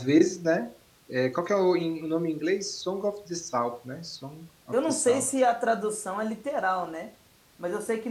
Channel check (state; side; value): identical; both; correlation 1.00